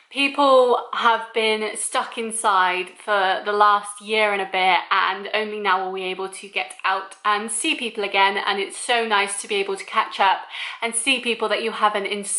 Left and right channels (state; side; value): identical; both; correlation 1.00